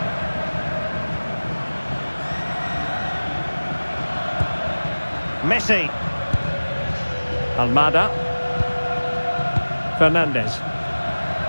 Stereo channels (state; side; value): inverted; both; correlation -1.00